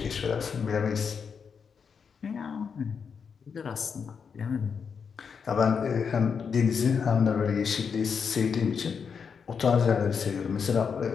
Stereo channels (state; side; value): quieter; right; 6.3 dB